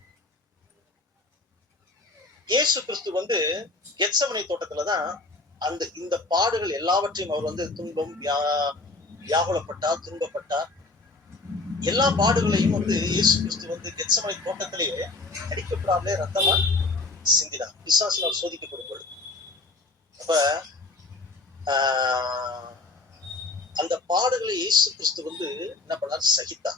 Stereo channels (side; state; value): right; quieter; 3.4 dB